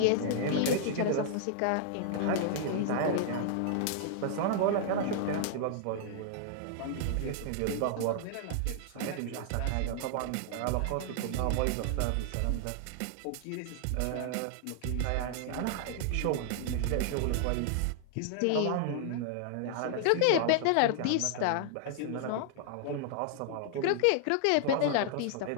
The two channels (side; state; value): both; different; correlation -0.01